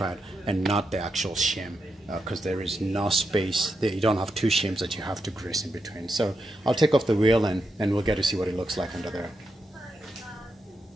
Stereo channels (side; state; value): both; normal; correlation 0.84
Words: and not the actual shim, because there is no space. You don't have two shims that you have to grease in between. So I'll take off the wheel and we'll get to see what it looks like under there.